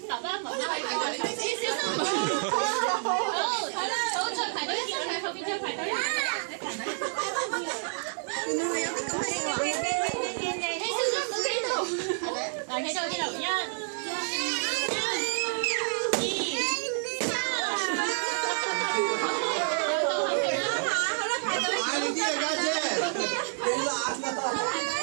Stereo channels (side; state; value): left; silent; 59 dB below the other